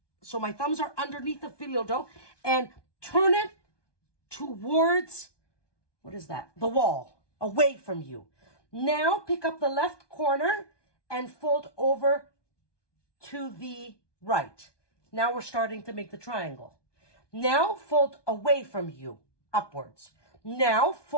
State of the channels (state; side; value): late; right; 1.2 ms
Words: So my thumbs are underneath the Fyllo dough. And turn it towards, what is that? The wall, away from you. Now pick up the left corner and fold over to the right. Now we're starting to make the triangle. Now fold away from you, upwards. Now